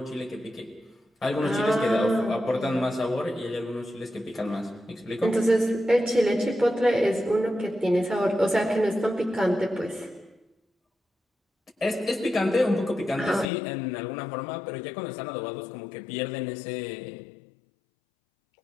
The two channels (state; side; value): drops out; right; at 13.5 s